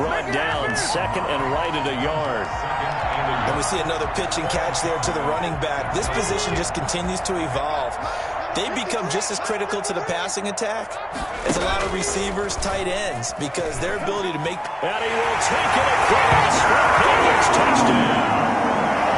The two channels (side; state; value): both; identical; correlation 1.00